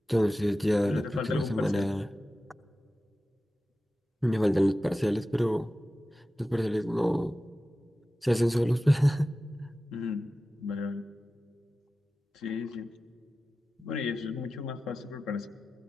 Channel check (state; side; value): normal; both; correlation 0.95